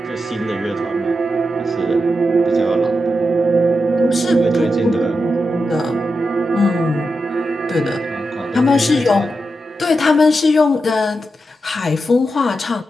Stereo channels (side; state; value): both; normal; correlation 0.88